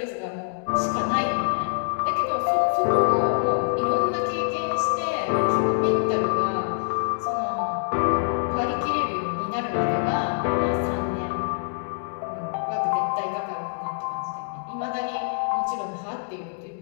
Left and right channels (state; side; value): silent; right; digital silence